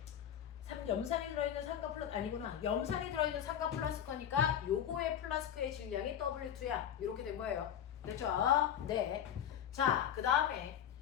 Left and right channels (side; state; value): right; quieter; 9.6 dB